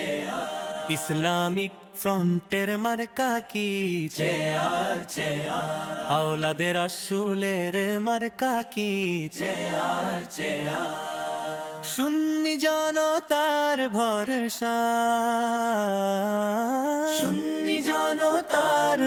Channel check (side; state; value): both; identical; correlation 1.00